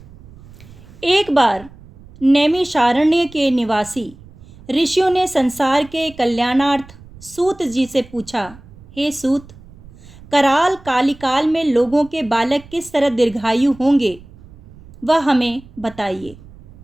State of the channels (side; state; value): right; noise; rumble, 22 dB below the sound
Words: एक बार नैमिषारण्य के निवासी ऋषियों ने संसार के कल्याणार्थ सूत जी से पूछा, हे सूत, कराल कालिकाल में लोगों के बालक किस तरह दीर्घायु होंगे, वह हमें बताइए।